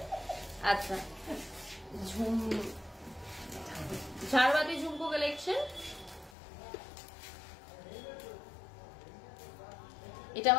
আচ্ছা, ঝাড়বাতি ঝুমকো কালেকশন, এটা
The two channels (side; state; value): right; drops out; at 6.3 s